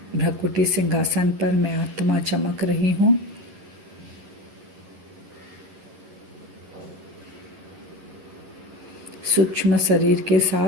भ्रकुटी सिंहासन पर मैं आत्मा चमक रही हूँ। सूक्ष्म शरीर के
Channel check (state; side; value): late; left; 11 ms